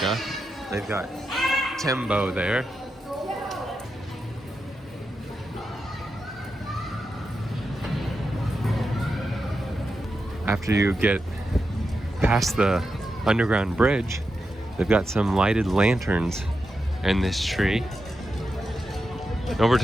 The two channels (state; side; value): normal; both; correlation 0.88